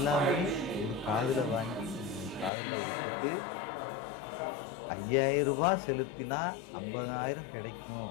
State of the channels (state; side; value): drops out; right; at 2.5 s